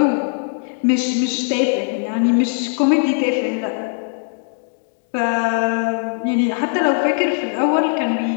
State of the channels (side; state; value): right; silent; 66 dB below the other